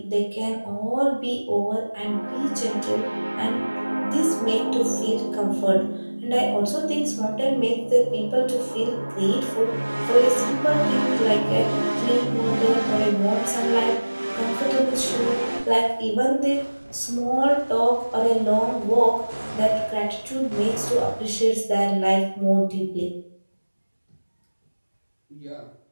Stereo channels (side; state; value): both; inverted; correlation -1.00